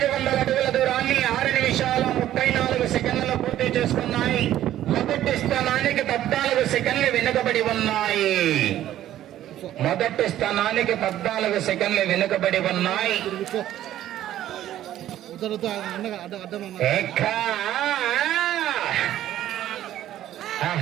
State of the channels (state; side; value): quieter; left; 12.6 dB